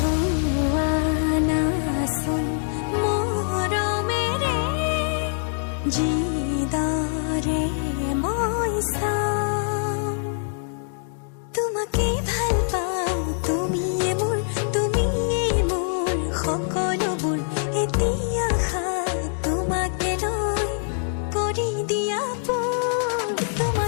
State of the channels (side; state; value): right; silent; digital silence